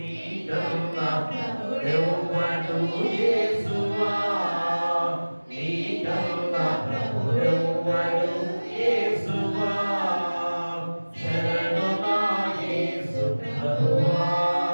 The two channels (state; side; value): inverted; both; correlation -1.00